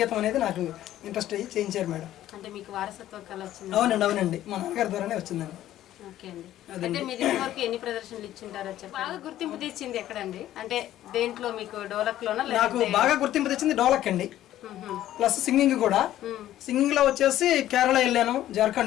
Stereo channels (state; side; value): quieter; right; 13.1 dB